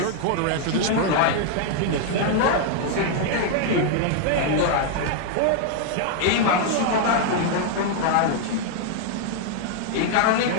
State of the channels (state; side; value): different; both; correlation 0.00